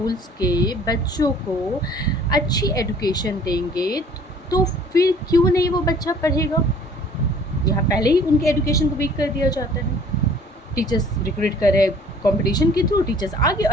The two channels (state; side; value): normal; both; correlation 0.53